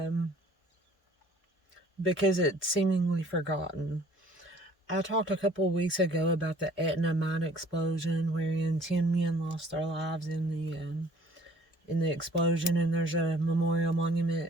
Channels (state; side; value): normal; both; correlation 0.54